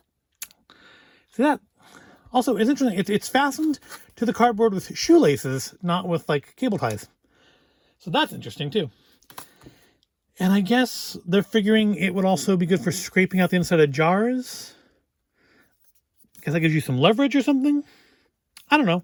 See that? Also, it's interesting. It's fastened to the cardboard with shoelaces, not with like cable ties. So that's interesting too. And I guess they're figuring it would also be good for scraping out the inside of jars. Because that gives you some leverage or something. I don't know.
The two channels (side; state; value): both; identical; correlation 1.00